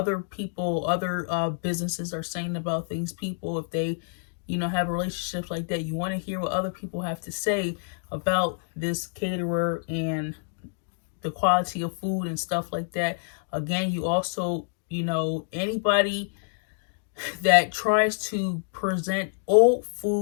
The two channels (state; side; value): silent; right; digital silence